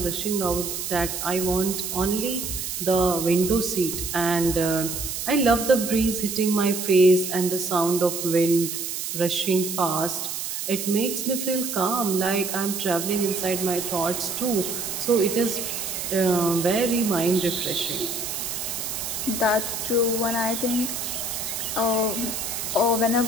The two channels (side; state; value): right; noise; hiss, 4 dB below the sound